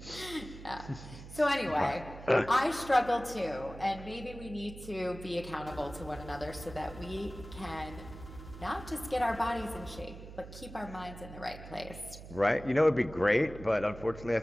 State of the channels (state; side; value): noise; right; hum, 14 dB below the sound